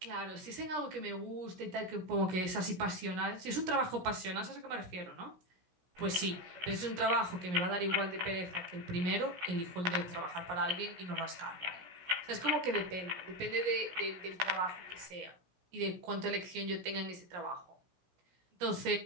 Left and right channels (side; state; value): left; late; 17 ms